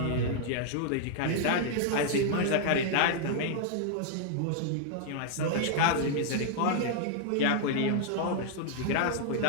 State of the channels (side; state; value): both; different; correlation -0.01